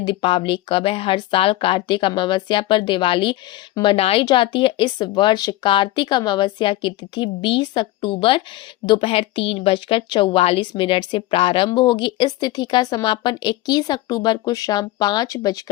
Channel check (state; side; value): quieter; right; 16.6 dB